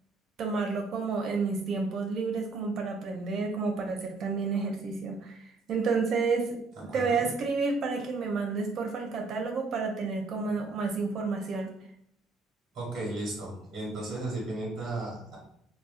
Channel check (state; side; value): quieter; left; 3.8 dB